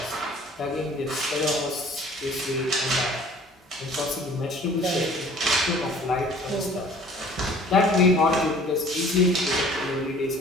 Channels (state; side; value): normal; both; correlation 0.51